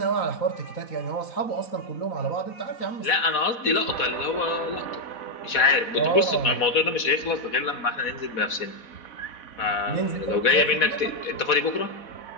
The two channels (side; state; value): right; late; 4.1 ms